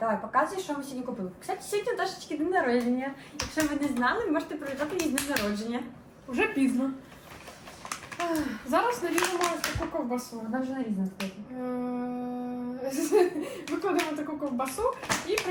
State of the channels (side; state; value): both; identical; correlation 1.00